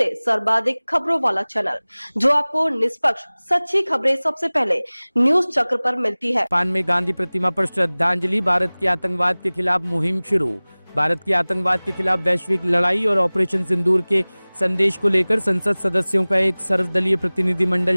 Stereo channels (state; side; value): inverted; both; correlation -1.00